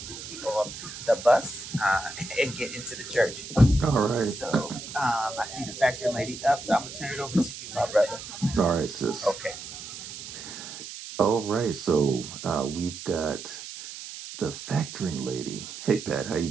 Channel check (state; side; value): noise; right; hiss, 11 dB below the sound